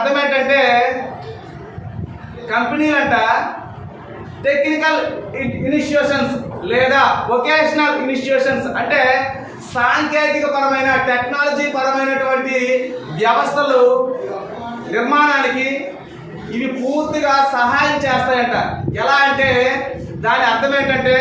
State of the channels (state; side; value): identical; both; correlation 1.00